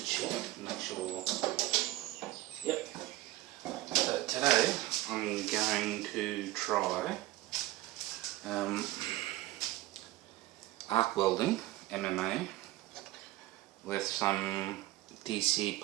check, make sure. Yep. So today I'm going to try arc welding, MMA, with some DC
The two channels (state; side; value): quieter; left; 17.3 dB